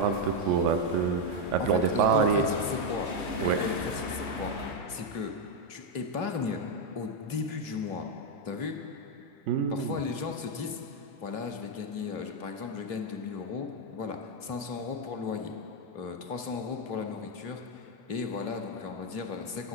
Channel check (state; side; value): late; right; 3.2 ms